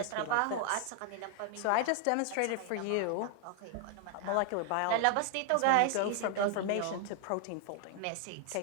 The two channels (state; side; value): different; both; correlation 0.00